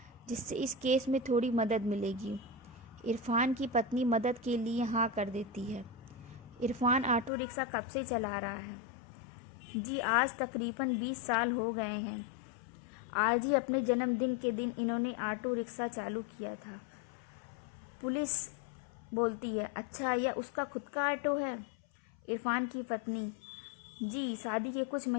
जिससे इस केस में थोड़ी मदद मिलेगी। इरफान की पत्नी मदद के लिए हाँ कर देती है। इरफान ऑटो रिक्शा कब से चला रहा है? जी, आज तकरीबन 20 साल हो गए हैं। आज ही अपने जन्मदिन के दिन इन्होंने ऑटो रिक्शा चालू किया था। पुलिस बोलती है, अच्छा, यह उसका खुद का ऑटो है? इरफान की पत्नी, जी, शादी के कुछ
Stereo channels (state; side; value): drops out; right; at 7.3 s